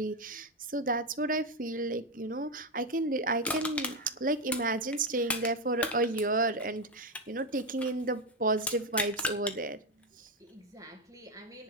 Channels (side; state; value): both; normal; correlation 0.09